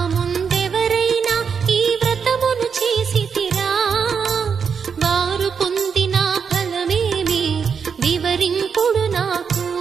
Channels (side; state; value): left; quieter; 6.4 dB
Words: ముందెవరైనా ఈ వ్రతమును చేసితిరా వారు పొందిన ఫలమేమి వివరింపుడు నాకు